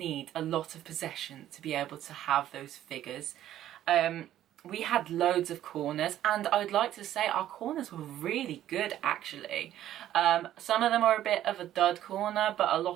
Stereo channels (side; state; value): left; quieter; 12.3 dB